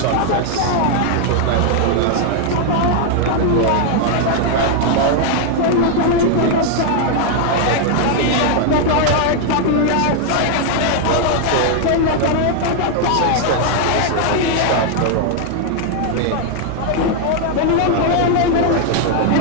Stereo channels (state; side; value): different; both; correlation 0.00